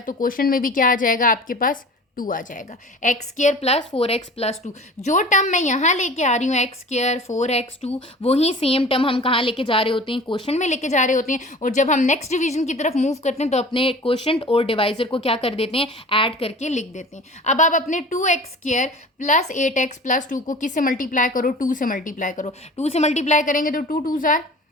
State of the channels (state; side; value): normal; both; correlation 0.41